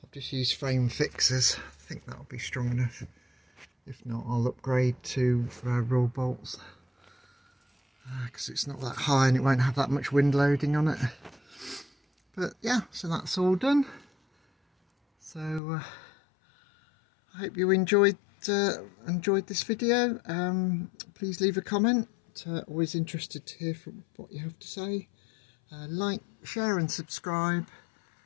I've just used frame fixers. I think that'll be strong enough. If not, I'll upgrade to raw bolts because it's not that high and it won't have that much wind loading on it. But yeah, so that's all done. So I hope you enjoyed this video. Please leave a comment. Always interested to hear from what you have to say. Like, share and subscribe,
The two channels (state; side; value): drops out; right; at 15.6 s